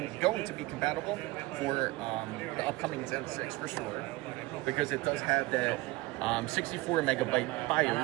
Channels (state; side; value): quieter; left; 20.9 dB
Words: to be compatible for the upcoming Zen 6 for sure, because it does have that 64 megabyte